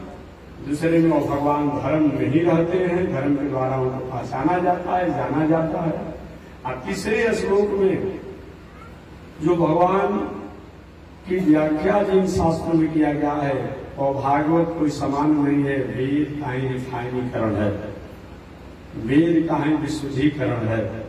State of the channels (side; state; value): both; identical; correlation 1.00